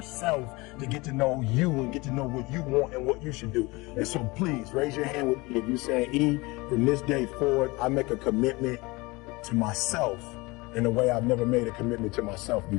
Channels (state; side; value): quieter; right; 23.9 dB